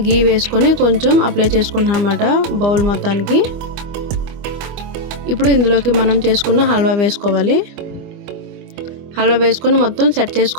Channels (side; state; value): left; late; 25 ms